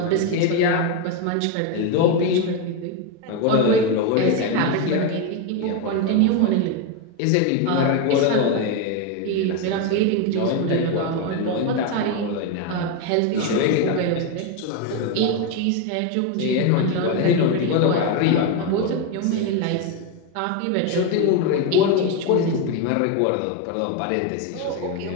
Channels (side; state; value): both; different; correlation 0.03